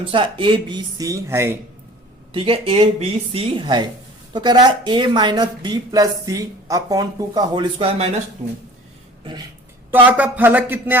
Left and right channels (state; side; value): normal; both; correlation 0.46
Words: a b c है, ठीक है, a b c है, तो कह रहा है a - b + c अपॉन 2 का होल स्क्वायर -2। तो आपका फलक कितने,